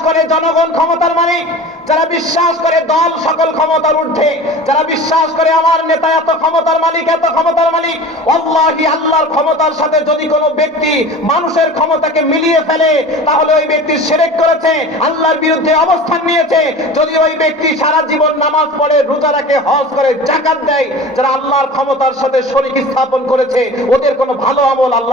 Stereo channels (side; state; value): both; normal; correlation 0.37